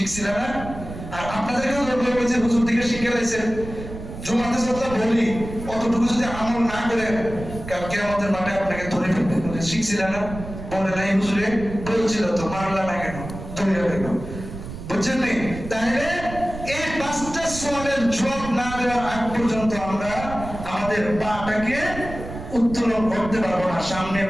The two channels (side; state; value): right; noise; rumble, 10 dB below the sound